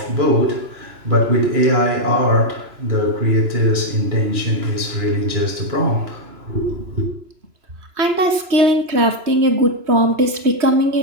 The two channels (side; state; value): left; late; 3.0 ms